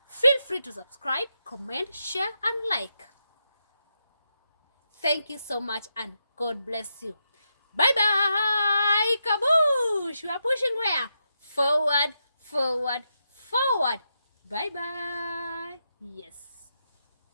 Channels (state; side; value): inverted; both; correlation -0.84